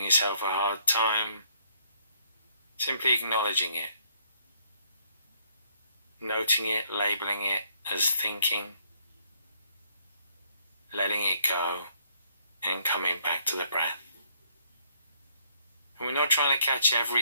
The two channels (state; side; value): inverted; both; correlation -0.67